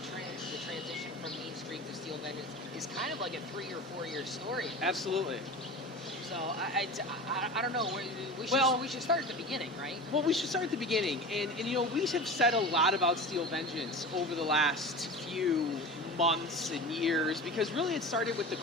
transition from Main Street to Steel Vengeance is kind of like a 3 or 4 year story. Absolutely. So I don't know. We should start at the beginning, right? Well, we should start at the beginning, and you know, we have said a lot about Steel Vengeance over the last few months and years because really it started with the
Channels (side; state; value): both; normal; correlation 0.32